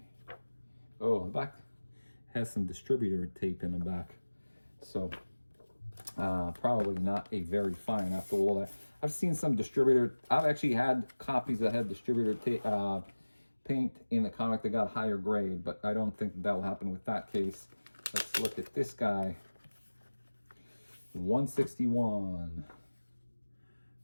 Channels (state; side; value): inverted; both; correlation -1.00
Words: Oh, the back has some distributor tape in the back. So probably not a very fine after all that. I've seen some distributor, I've actually had copies that had distributor paint in the comic that got higher grade, but I don't think that will happen with that case. Let's look at this guy. 161.